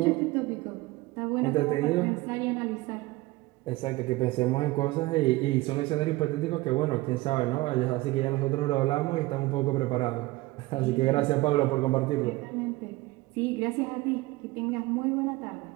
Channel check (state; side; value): quieter; left; 20.1 dB